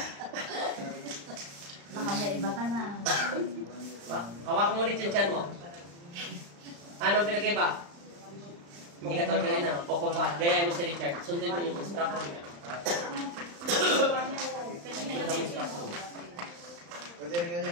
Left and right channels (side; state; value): left; late; 35 ms